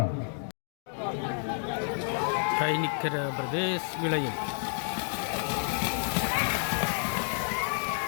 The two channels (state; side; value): silent; right; 58 dB below the other